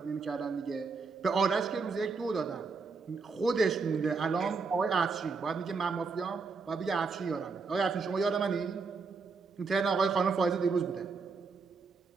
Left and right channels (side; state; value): left; quieter; 4.7 dB